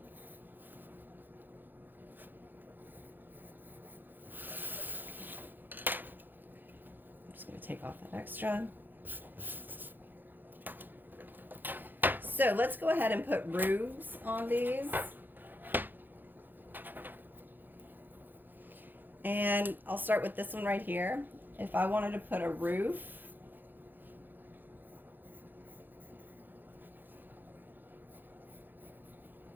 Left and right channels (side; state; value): left; late; 0.089 ms